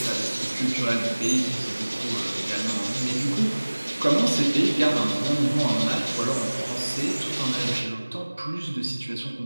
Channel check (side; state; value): both; inverted; correlation -1.00